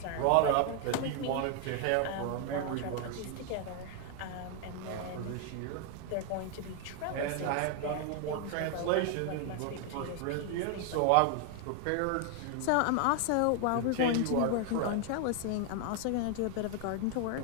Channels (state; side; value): different; both; correlation 0.00